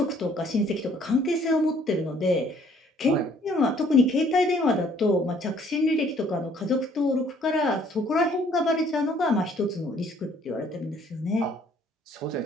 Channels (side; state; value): both; normal; correlation 0.61